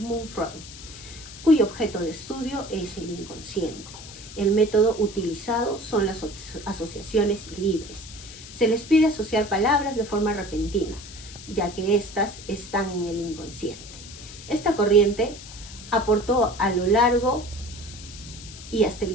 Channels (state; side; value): noise; left; hiss, 15 dB below the sound